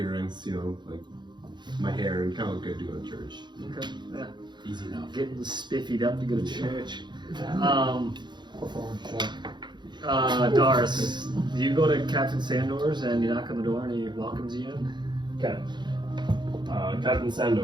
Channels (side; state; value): left; late; 0.22 ms